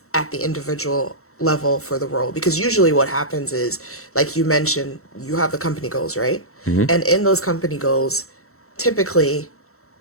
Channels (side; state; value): right; late; 0.63 ms